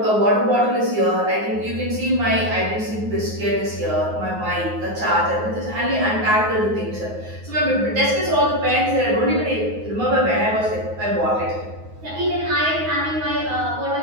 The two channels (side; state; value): left; late; 9.5 ms